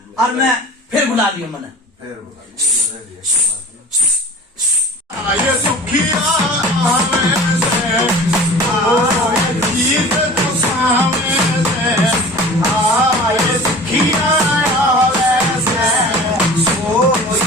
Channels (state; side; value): normal; both; correlation 0.40